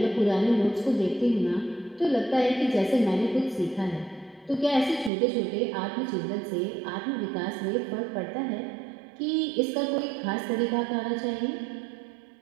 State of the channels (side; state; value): left; drops out; at 5.1 s